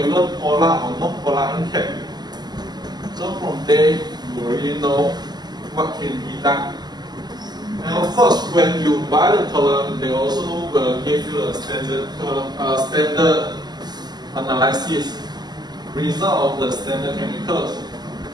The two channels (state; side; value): late; left; 0.20 ms